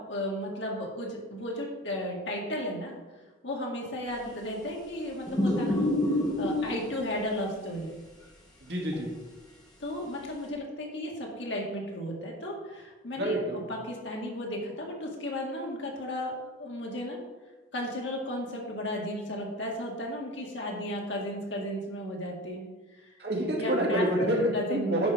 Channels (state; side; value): normal; both; correlation 0.35